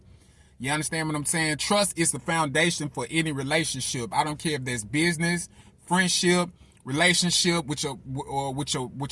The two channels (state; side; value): identical; both; correlation 1.00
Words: You understand what I'm saying? Trust is the foundation for any relationship. I don't care if there's business, friendship, relationship with your